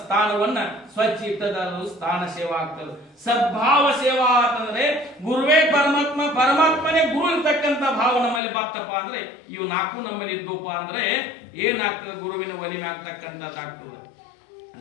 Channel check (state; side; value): drops out; right; at 8.4 s